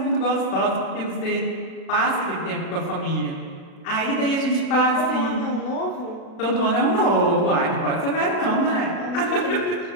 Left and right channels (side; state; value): right; late; 36 ms